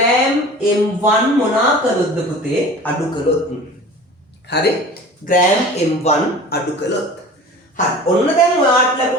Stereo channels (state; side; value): normal; both; correlation 0.40